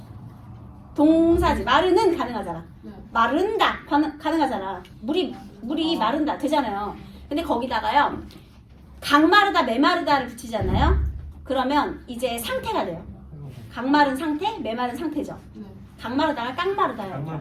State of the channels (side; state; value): both; identical; correlation 1.00